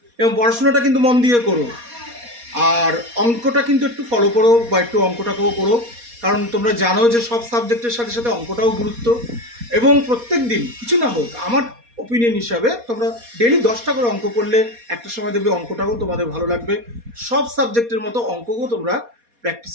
এবং পড়াশোনাটা কিন্তু মন দিয়ে করো। আর অঙ্কটা কিন্তু একটু ফলো করো, বা একটু অঙ্কটাকেও করো, কারণ তোমরা জানো যে সব সাবজেক্টের সাথে সাথে অঙ্কটাও গুরুত্ব। এবং প্রত্যেক দিন কিছু না হোক, আমার ওপিনিয়ন হিসাবে তোমরা ডেলি 10টা করে অঙ্ক করলে একটা সময় দেখবে অঙ্কটাও তোমাদের ভালো লাগবে। সব সাবজেক্টের মতো অঙ্ককেও তোমরা প্র্যাকটিস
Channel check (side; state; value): left; late; 4.2 ms